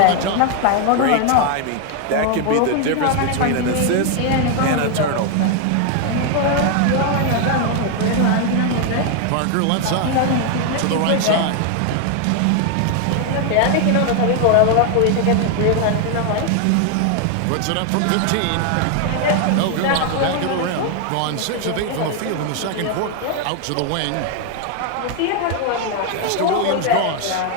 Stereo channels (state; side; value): different; both; correlation 0.01